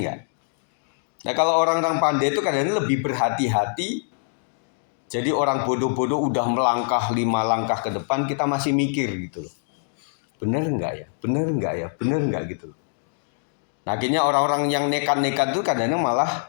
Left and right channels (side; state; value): right; silent; digital silence